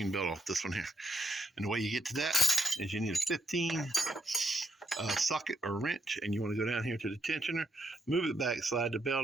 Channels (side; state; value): both; normal; correlation 0.73